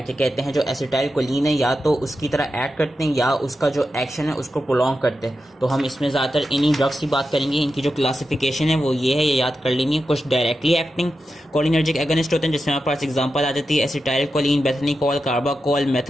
कहते हैं, जो एसिटाइल कोलिन है या तो उसकी तरह ऐड करते हैं या उसका जो एक्शन है उसको प्रोलॉन्ग करते हैं। तो हम इसमें ज़्यादातर इन्हीं ड्रग्स की बात करेंगे। इनकी जो क्लासिफिकेशन है वो ये है, ये याद कर लेनी है। कुछ डायरेक्टली एक्टिंग कोलिनर्जिक एगोनिस्ट होते हैं जिसमें हमारे पास एग्जांपल आ जाती है acetylcholine, bethanechol, carbachol,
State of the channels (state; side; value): normal; both; correlation 0.90